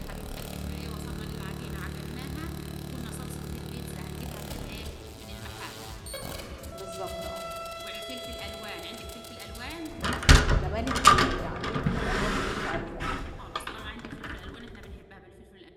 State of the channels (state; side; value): identical; both; correlation 1.00